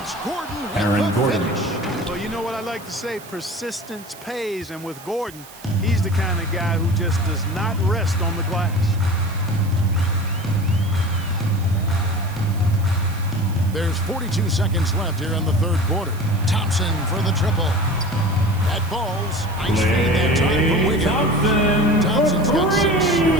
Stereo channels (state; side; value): noise; right; hiss, 20 dB below the sound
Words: it's Gordon with Aaron the Gordon. finish. Well, you know what I like to say? Persistence pays. And with Gordon, he's the kind of guy who just does not rest on the glass. There's 42 seconds left here in the third quarter. Thompson for the triple. That falls. Nice feed that time from Wiggins. Thompson's got 6 here in